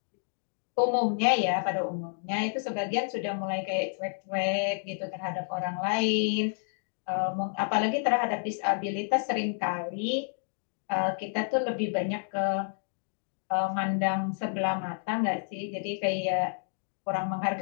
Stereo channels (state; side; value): silent; right; digital silence